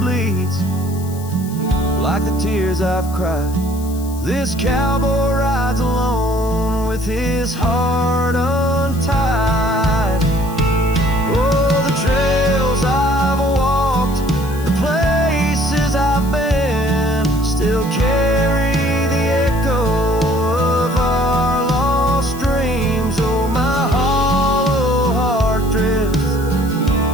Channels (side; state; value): left; noise; hiss, 18 dB below the sound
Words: like the tears I've cried. This cowboy rides alone with his heart untied. Oh, the trails I've walked, the places I've been, still carry the echo of our lost dreams. Oh, my hollow heart drifts,